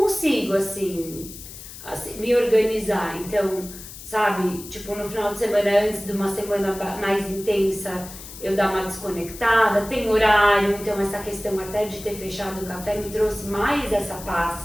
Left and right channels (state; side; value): noise; left; hiss, 14 dB below the sound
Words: assim, me organizar. Então, sabe, tipo, no final de semana, antes de uma semana mais intensa, eu dar uma desconectada, tem horário, então essa questão até de ter fechado o café me trouxe mais essa